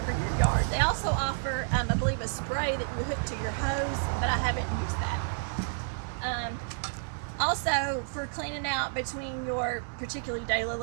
your yard. They also offer, I believe, a spray that you hook to your hose, but I haven't used that. Also, for cleaning out between your particularly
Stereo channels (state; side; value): silent; left; digital silence